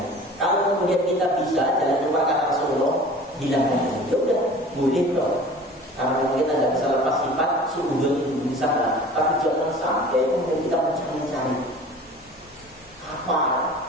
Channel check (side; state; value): both; normal; correlation 0.43